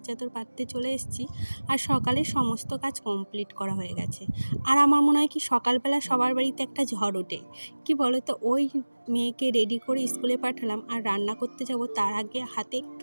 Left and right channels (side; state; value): both; inverted; correlation -1.00